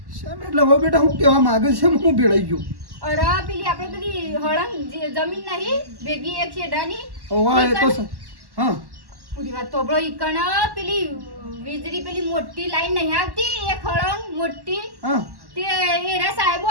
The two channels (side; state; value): left; late; 1.1 ms